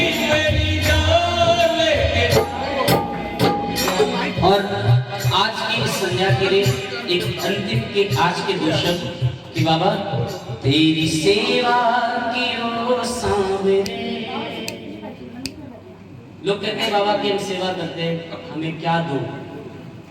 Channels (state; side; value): identical; both; correlation 1.00